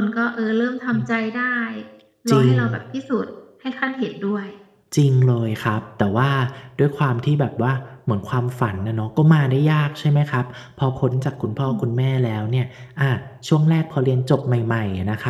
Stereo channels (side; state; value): both; identical; correlation 1.00